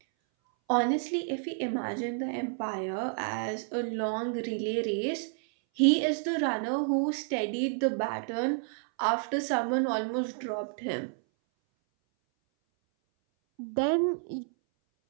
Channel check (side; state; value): left; silent; 58 dB below the other